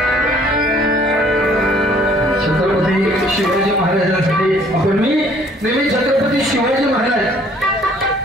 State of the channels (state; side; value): normal; both; correlation 0.59